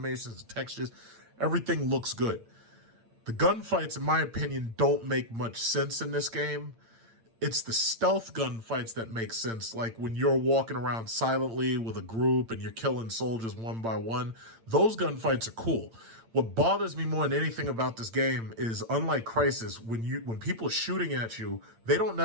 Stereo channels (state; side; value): late; left; 8.9 ms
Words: the textures, everything looks good. The gunfights, in my opinion, don't make much sense in this game. It's the stealth gunfights that make sense, like when you're walking around silently with a group and you're killing soldiers one by one. Those gunfights are cool. What bothers me more than anything about this game is, unlike Crysis, when people are shooting at you, they don't